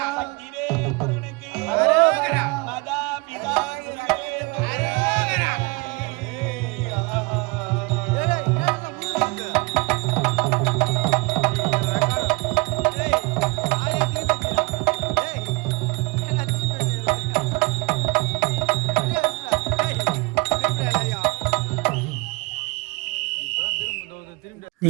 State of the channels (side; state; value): left; quieter; 27.9 dB